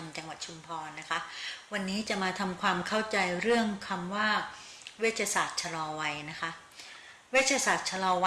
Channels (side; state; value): both; identical; correlation 1.00